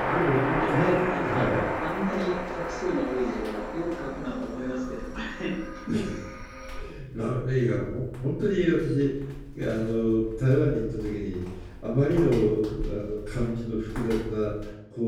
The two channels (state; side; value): identical; both; correlation 1.00